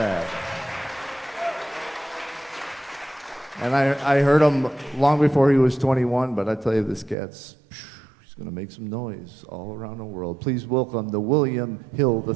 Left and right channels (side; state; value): left; drops out; at 7.2 s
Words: And I heard him long before he was 21, but I tell you, this cat's, he's going to make some noise all around the world. Please welcome the William Hill